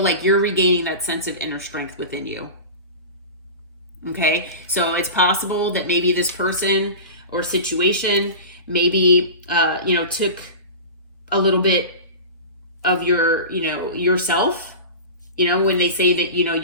you're regaining that sense of inner strength within you. Okay, so it's possible that maybe this person or situation maybe, you know, took a little bit of your, you know, yourself. You know, when they say that, you know,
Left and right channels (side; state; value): both; inverted; correlation -0.31